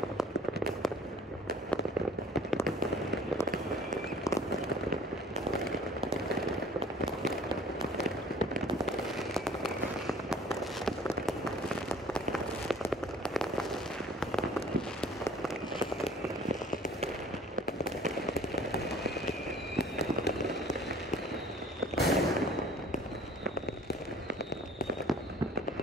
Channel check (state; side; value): normal; both; correlation 0.51